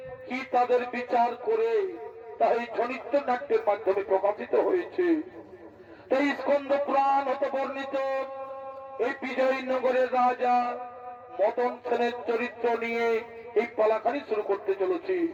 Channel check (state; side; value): identical; both; correlation 1.00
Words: কি তাদের বিচার করে তা এই ছনিত্য নাট্যের মাধ্যমে প্রকাশিত হয়েছে। তাই স্কন্দ পুরাণ হতে বর্ণিত এই বিজয়নগরের রাজা মদন সেনের চরিত্র নিয়ে এই পালাখানি শুরু করতে চলেছি।